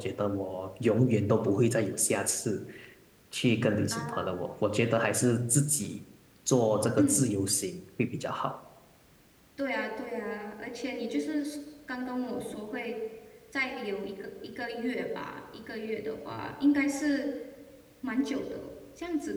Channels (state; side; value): identical; both; correlation 1.00